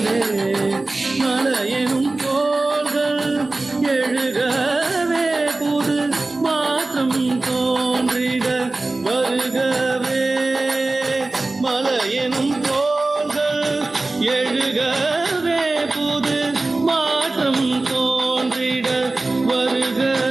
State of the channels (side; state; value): left; quieter; 3.1 dB